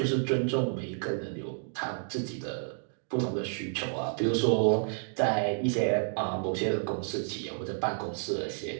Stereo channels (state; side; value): silent; left; digital silence